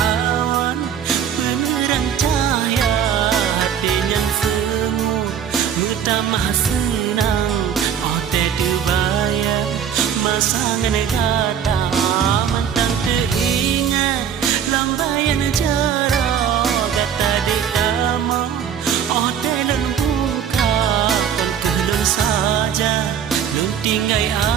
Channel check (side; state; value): left; quieter; 8.3 dB